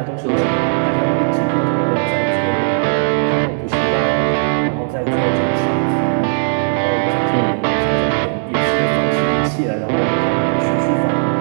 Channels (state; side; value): silent; left; 66 dB below the other